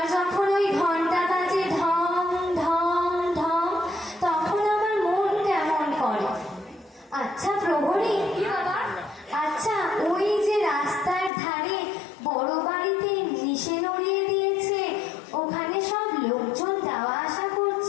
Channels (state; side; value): drops out; right; at 11.3 s